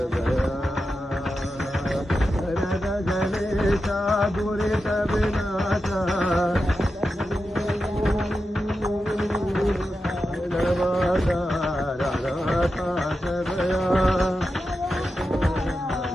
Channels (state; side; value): normal; both; correlation 0.90